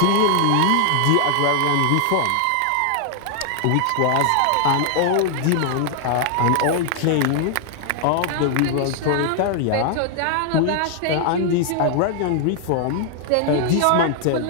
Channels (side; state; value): both; different; correlation 0.00